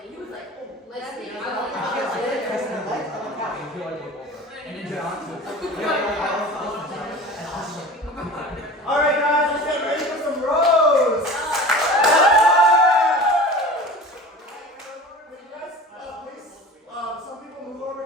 All right, guys, let's get ready for some rows. Please, some people move over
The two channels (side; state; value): both; normal; correlation 0.37